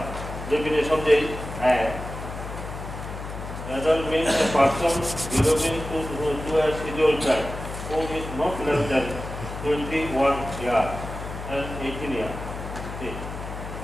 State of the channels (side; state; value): left; noise; hum, 9 dB below the sound